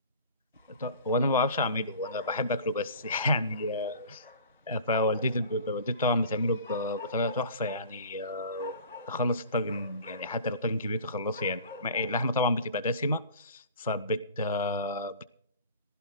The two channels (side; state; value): both; inverted; correlation -0.42